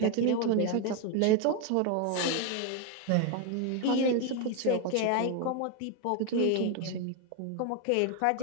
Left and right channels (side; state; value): both; different; correlation 0.01